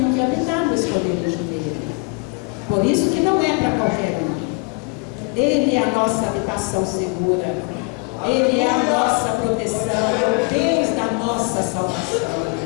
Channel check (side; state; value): right; quieter; 31.9 dB